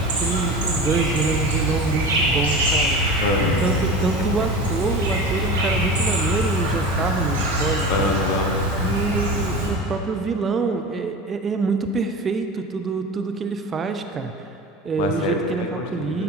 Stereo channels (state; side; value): normal; both; correlation 0.30